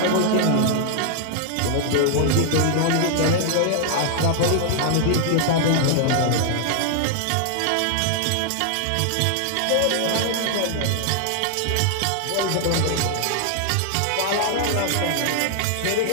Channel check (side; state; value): both; different; correlation 0.00